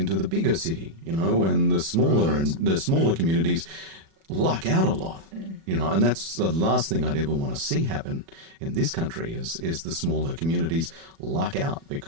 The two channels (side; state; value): left; late; 37 ms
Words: the bigger city, and the smaller communities luck out a lot, and that's the last thing I'd ever want to see happen in this country is the smaller communities luck out